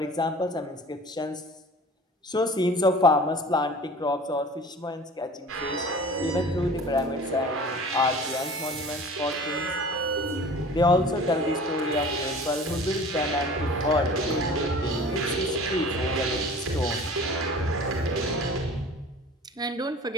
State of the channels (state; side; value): normal; both; correlation 0.42